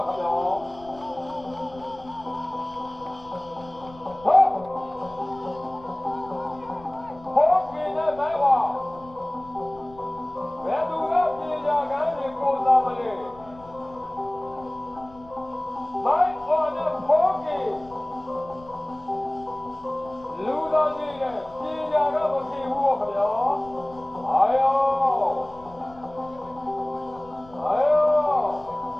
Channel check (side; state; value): left; noise; rumble, 22 dB below the sound